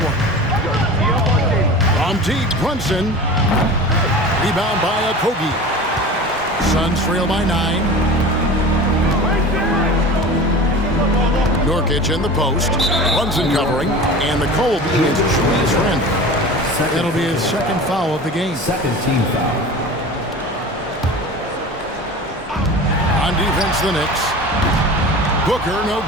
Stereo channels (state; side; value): normal; both; correlation 0.35